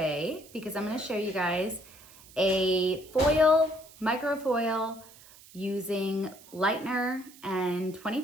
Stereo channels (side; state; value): right; noise; hiss, 22 dB below the sound